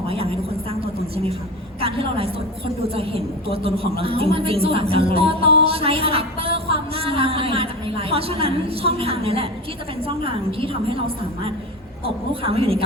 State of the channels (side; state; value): both; normal; correlation 0.27